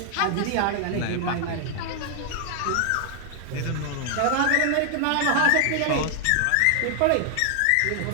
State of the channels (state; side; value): different; both; correlation 0.00